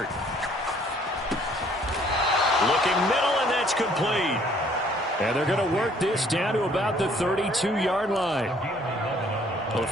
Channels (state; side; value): normal; both; correlation 0.60